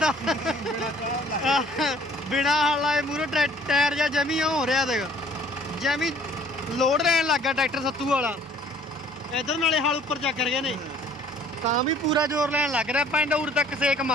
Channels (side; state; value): both; normal; correlation 0.56